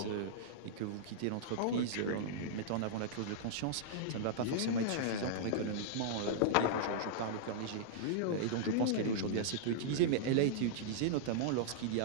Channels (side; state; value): both; different; correlation -0.02